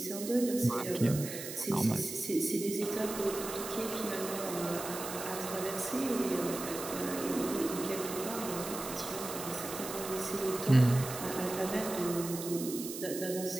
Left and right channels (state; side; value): noise; right; hiss, 8 dB below the sound